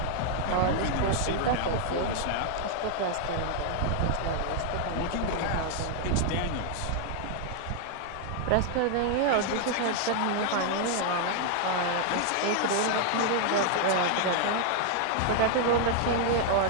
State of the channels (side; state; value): both; different; correlation 0.00